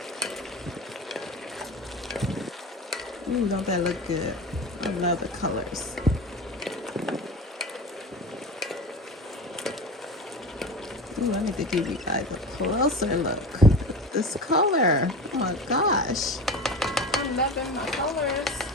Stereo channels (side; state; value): both; normal; correlation 0.30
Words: Ooh, don't that look good? I love the colors. Ooh, I need to give you guys a closer look at this color. Oh my gosh. I'm loving my colors.